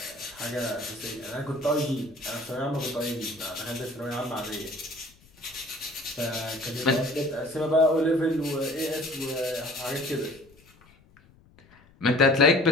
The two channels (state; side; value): noise; left; rumble, 28 dB below the sound